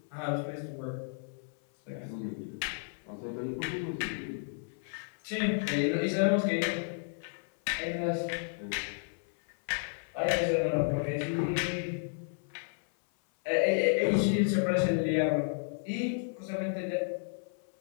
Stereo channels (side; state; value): right; silent; 56 dB below the other